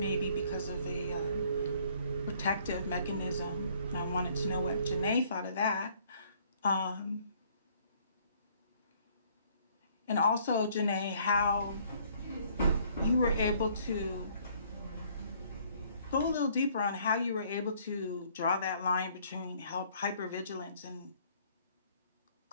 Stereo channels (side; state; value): both; inverted; correlation -0.61